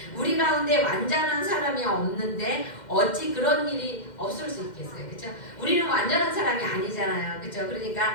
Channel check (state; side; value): late; right; 2.1 ms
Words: 우리 가운데 완전한 사람이 없는데 어찌 그런 일이 없을 수 있겠어요. 그렇죠? 우리는 완전한 사람이 아니잖아요. 그렇죠?